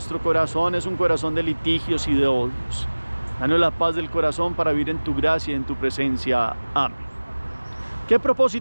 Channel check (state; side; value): inverted; both; correlation -1.00